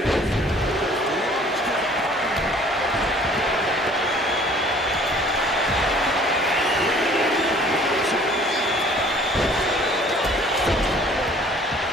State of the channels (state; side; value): normal; both; correlation 0.53